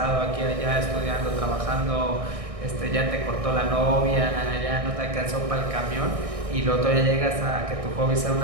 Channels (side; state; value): left; late; 1.6 ms